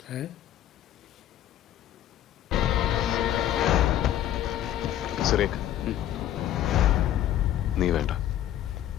है സുരേഖ് നീ വേണ്ട.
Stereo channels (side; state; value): right; quieter; 12.0 dB